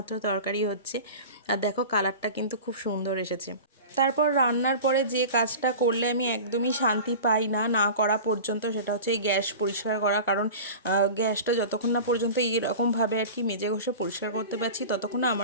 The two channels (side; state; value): both; inverted; correlation -0.34